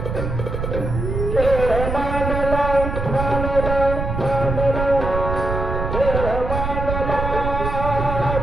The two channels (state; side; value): noise; right; rumble, 3 dB below the sound